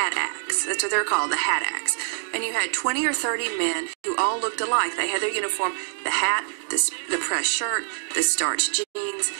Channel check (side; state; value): left; silent; digital silence